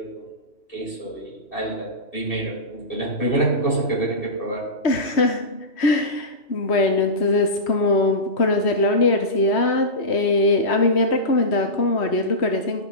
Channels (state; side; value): late; right; 3.1 ms